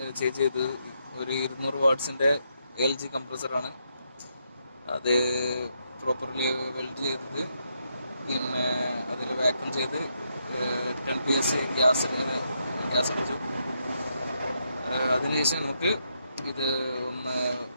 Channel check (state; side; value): inverted; both; correlation -0.79